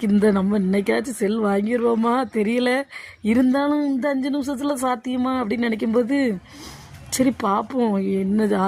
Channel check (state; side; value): identical; both; correlation 1.00